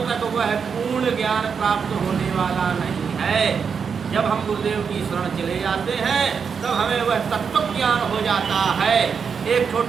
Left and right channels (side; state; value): left; quieter; 6.3 dB